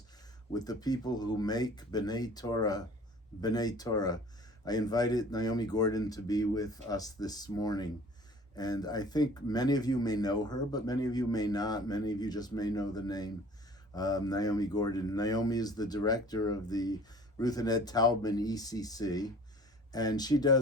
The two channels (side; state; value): both; normal; correlation 0.48